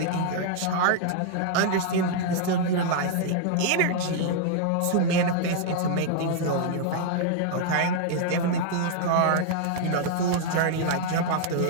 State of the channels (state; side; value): different; both; correlation 0.00